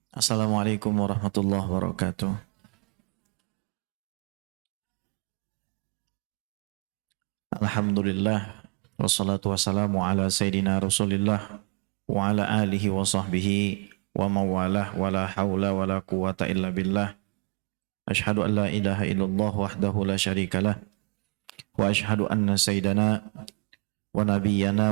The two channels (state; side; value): quieter; left; 34.2 dB